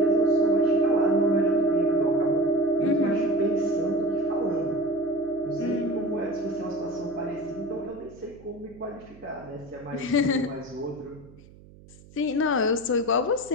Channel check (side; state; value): right; noise; hum, 23 dB below the sound